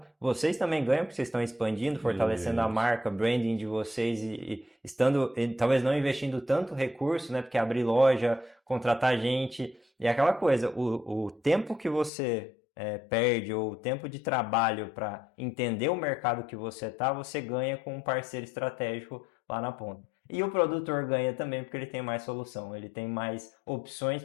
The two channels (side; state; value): right; drops out; at 12.1 s